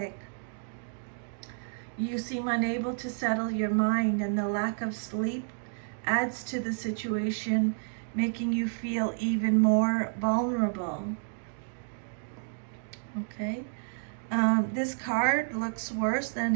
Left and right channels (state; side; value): silent; left; digital silence